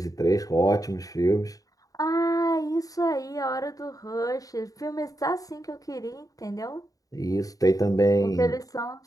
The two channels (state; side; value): late; right; 0.17 ms